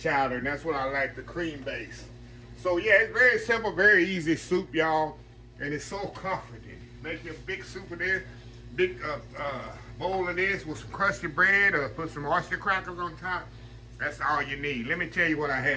and that's what I like, the cream-based. So yeah, it's very simple, very easy soup, y'all. And it's so comforting. Make you a big soup of this, big bowl of this with some crusty bread or put some oyster crackers on top. That's all you need. Let me tell you what I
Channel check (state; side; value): identical; both; correlation 1.00